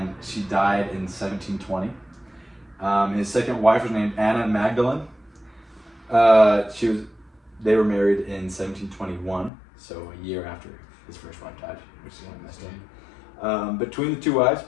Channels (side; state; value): right; drops out; at 9.5 s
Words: she died in 1720. His second wife was named Anna Magdalene. They were married in 1721, so a year after his first wife died, which is kind of messed up. Between the 2 wives,